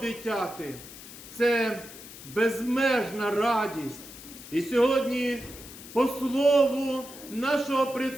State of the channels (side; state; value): left; noise; hiss, 15 dB below the sound